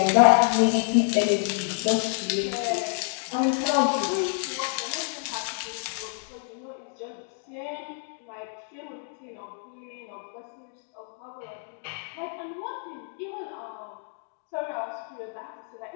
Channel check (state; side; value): silent; right; 57 dB below the other